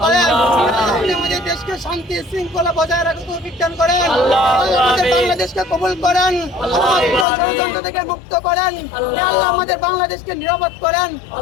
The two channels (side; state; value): right; drops out; at 7.2 s